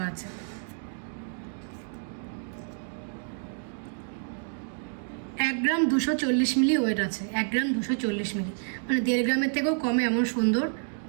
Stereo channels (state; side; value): silent; left; digital silence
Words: আছে। এক গ্রাম 240 মিলি ওয়েট আছে। 1 গ্রাম 240 মিলি মানে 1.5 গ্রামের থেকেও কমে এমন সুন্দর